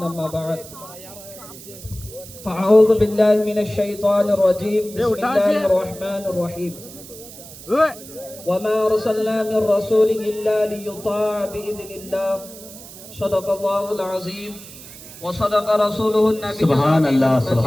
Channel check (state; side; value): noise; right; hiss, 16 dB below the sound